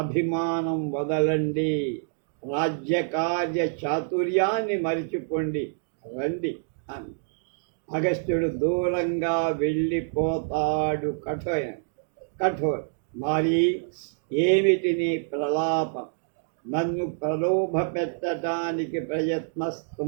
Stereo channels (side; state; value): left; silent; digital silence